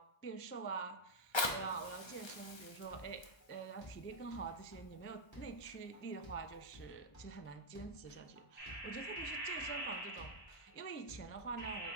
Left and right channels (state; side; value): late; right; 1.3 ms